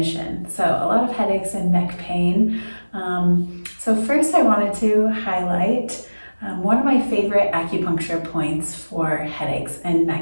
So a lot of headaches and neck pain. So first I wanted to highlight one of my favorite acupuncture points for headaches and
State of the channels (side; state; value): both; inverted; correlation -1.00